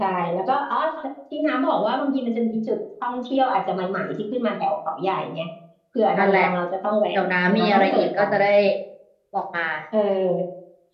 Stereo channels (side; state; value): both; identical; correlation 1.00